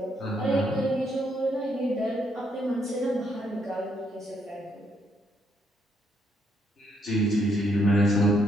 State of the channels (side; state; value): both; normal; correlation 0.74